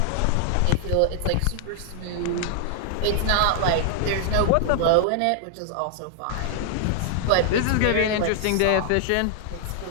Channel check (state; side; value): different; both; correlation -0.01